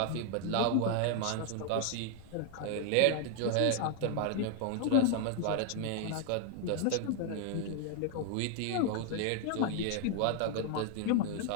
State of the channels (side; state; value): both; different; correlation 0.00